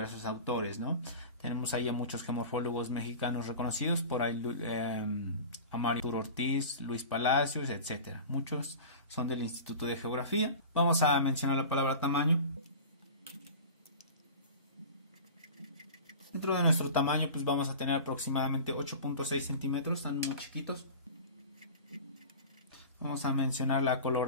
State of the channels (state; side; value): inverted; both; correlation -0.35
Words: autores, ¿no? Tenemos ahí a muchos geomorfólogos mexicanos reconocidos, por ahí a Mario Ortiz, Luis Palacios, etcétera. Muchos son del Instituto de Geografía. Vamos a mencionar la palabra tamaño. Dentro de nuestro tamaño, pues vamos a tener aproximadamente 8.6 centímetros, están muy chiquitos. Vamos a mencionar la